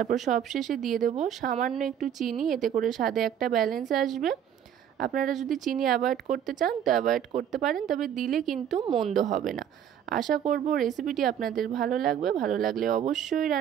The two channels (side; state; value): left; quieter; 9.4 dB